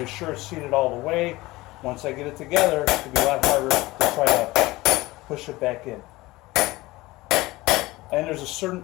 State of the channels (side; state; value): right; quieter; 19.9 dB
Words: be sure it's seated all the way. Once I get it together, it'll be a lot harder to try to push it back in. And there's a certain